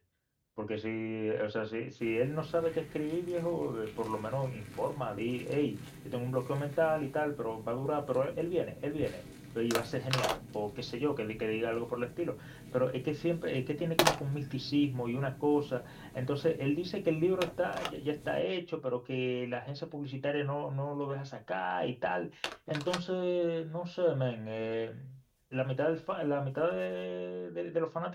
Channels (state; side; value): identical; both; correlation 1.00